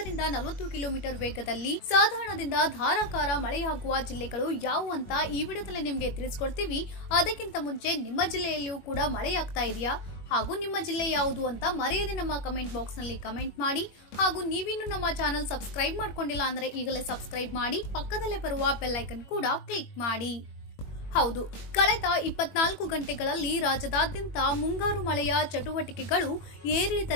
40 ಕಿಲೋಮೀಟರ್ ವೇಗದಲ್ಲಿ ಸಾಧಾರಣದಿಂದ ಧಾರಾಕಾರ ಮಳೆಯಾಗುವ ಜಿಲ್ಲೆಗಳು ಯಾವುವು ಅಂತ ಈ ವಿಡಿಯೋದಲ್ಲಿ ನಿಮಗೆ ತಿಳಿಸ್ಕೊಡ್ತೀವಿ. ಅದಕ್ಕಿಂತ ಮುಂಚೆ ನಿಮ್ಮ ಜಿಲ್ಲೆಯಲ್ಲಿಯೂ ಕೂಡ ಮಳೆಯಾಗ್ತಾ ಇದೆಯಾ ಹಾಗೂ ನಿಮ್ಮ ಜಿಲ್ಲೆ ಯಾವುದು ಅಂತ ಮರೆಯದೆ ನಮ್ಮ ಕಮೆಂಟ್ ಬಾಕ್ಸ್ ನಲ್ಲಿ ಕಮೆಂಟ್ ಮಾಡಿ. ಹಾಗೂ ನೀವಿನ್ನು ನಮ್ಮ ಚಾನೆಲ್ ಸಬ್ಸ್ಕ್ರೈಬ್ ಮಾಡ್ಕೊಂಡಿಲ್ಲ ಅಂದ್ರೆ ಈಗಲೇ ಸಬ್ಸ್ಕ್ರೈಬ್ ಮಾಡಿ, ಪಕ್ಕದಲ್ಲೇ ಬರುವ ಬೆಲ್ ಐಕನ್ ಕೂಡ ಕ್ಲಿಕ್ ಮಾಡಿ. ಹೌದು, ಕಳೆದ 24 ಗಂಟೆಗಳಲ್ಲಿ ರಾಜ್ಯದಾದ್ಯಂತ ಮುಂಗಾರು ಮಳೆಯ ಚಟುವಟಿಕೆಗಳು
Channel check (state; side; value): late; right; 21 ms